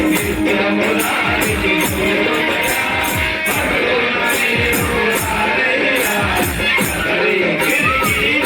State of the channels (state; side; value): identical; both; correlation 1.00